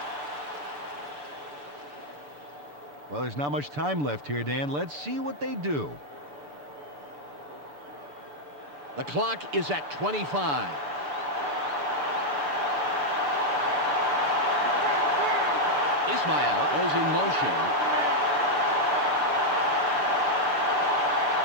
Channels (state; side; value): late; left; 6.9 ms